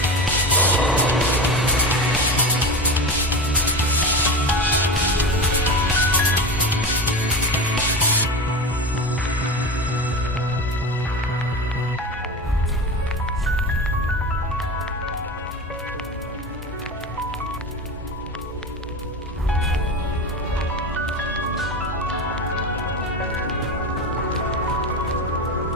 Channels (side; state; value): both; normal; correlation 0.25